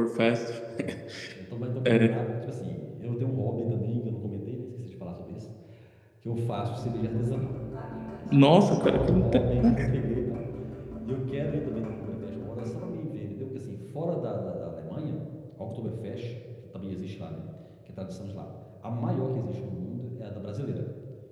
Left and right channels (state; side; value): identical; both; correlation 1.00